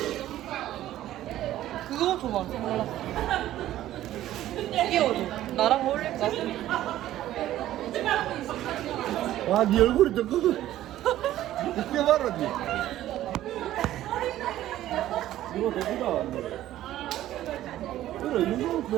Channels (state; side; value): quieter; left; 13.6 dB